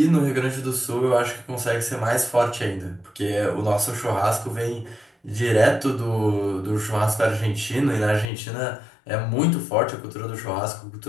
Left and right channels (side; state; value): right; drops out; at 8.3 s